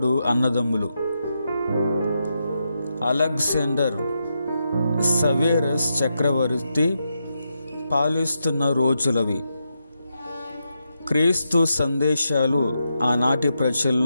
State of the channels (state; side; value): inverted; both; correlation -0.85